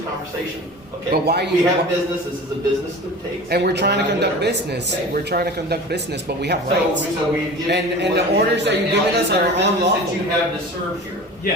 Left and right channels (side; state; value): both; normal; correlation 0.36